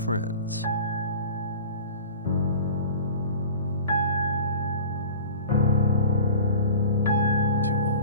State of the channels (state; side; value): inverted; both; correlation -0.38